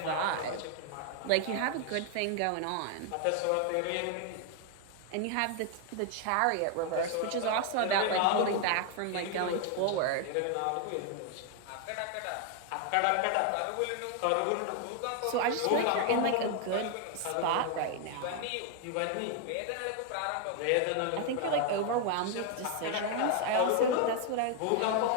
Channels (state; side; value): different; both; correlation 0.00